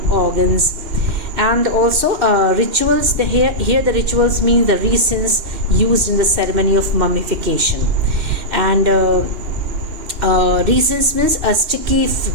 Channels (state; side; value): late; left; 2.8 ms